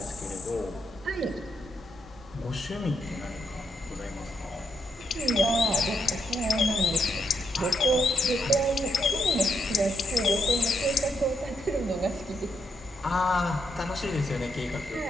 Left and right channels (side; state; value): both; normal; correlation 0.78